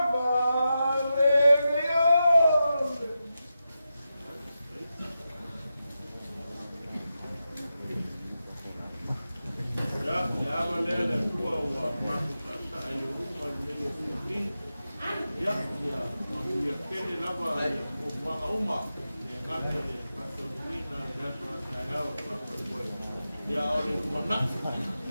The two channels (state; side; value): inverted; both; correlation -0.90